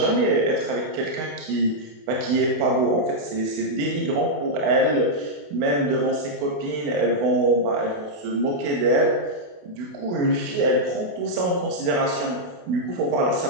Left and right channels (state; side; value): late; left; 28 ms